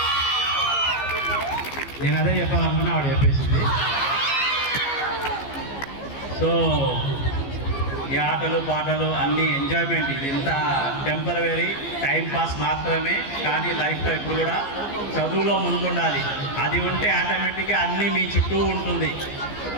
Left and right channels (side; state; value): right; late; 15 ms